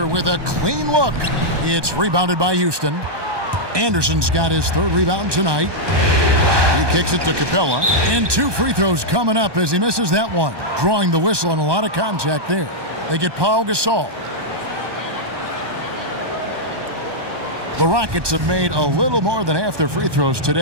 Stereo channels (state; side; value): late; left; 1.2 ms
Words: with a clean look. It's rebounded by Houston. Anderson's got his third rebound tonight. He kicks it to Capella. And 2 free throws coming up as he misses that one. Drawing the whistle and a lot of contact there. They get Pau Gasol. The Rockets have made a little more than half their free throws